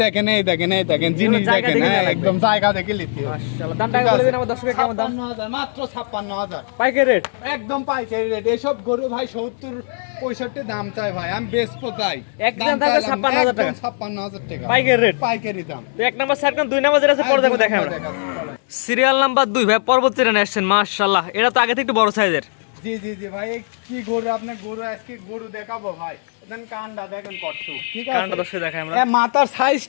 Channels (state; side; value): silent; right; digital silence